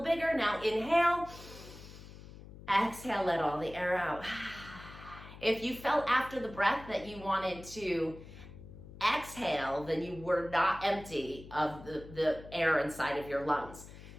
bigger. Now inhale. Exhale, let all the air out. If you felt after the breath that you wanted to exhale, then you were not empty of the air inside of your lungs.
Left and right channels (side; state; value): left; noise; hum, 16 dB below the sound